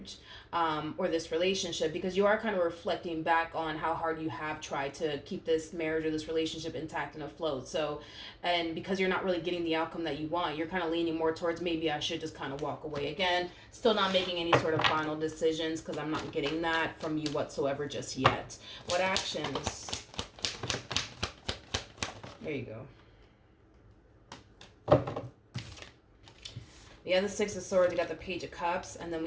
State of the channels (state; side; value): identical; both; correlation 1.00